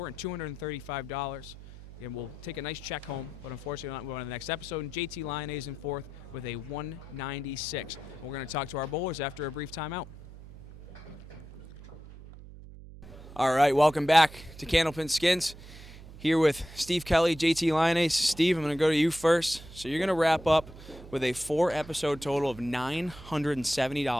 and $235. And we'll take a nice check home, but unfortunately we're not moving on to the next episode. And JT Lyonnais in 4th with a 196. We're going to talk to our bowlers after a brief timeout. All right, welcome back to Candlepin Skins. Here with Steve Kelly, JT Lyonnais. Steve, I'm going to go to you first. So you're going to wrap up with a 4-episode total of $970,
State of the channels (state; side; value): noise; right; hum, 17 dB below the sound